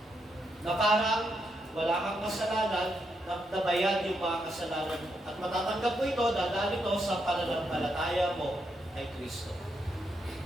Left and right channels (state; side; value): normal; both; correlation 0.80